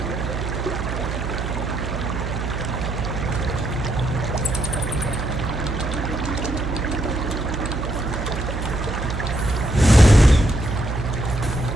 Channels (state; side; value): noise; right; hum, 4 dB below the sound